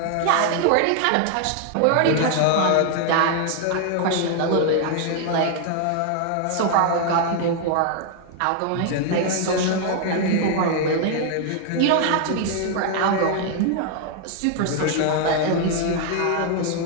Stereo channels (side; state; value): both; different; correlation 0.00